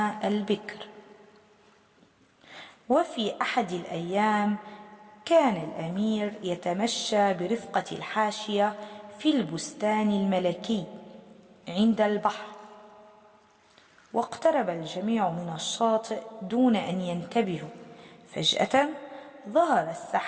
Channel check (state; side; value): identical; both; correlation 1.00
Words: البكر. وفي أحد الأيام كان الأمير يتمشى برفقة الحاشية في البستان الملكي عند البحر، واقترب الجميع من الشاطئ دون أن ينتبهوا. فجأة ظهرت